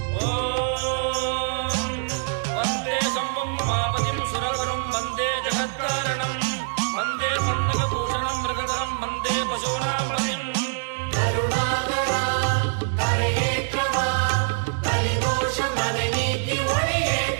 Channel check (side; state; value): left; silent; 62 dB below the other